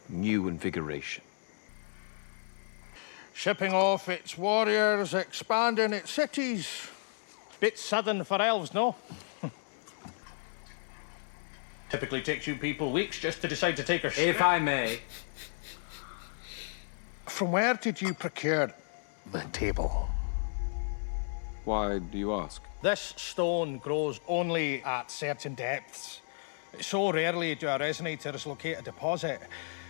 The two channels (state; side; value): silent; right; 56 dB below the other